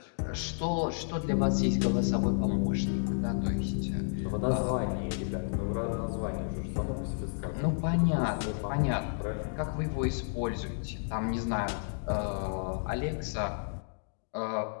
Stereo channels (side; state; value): right; silent; digital silence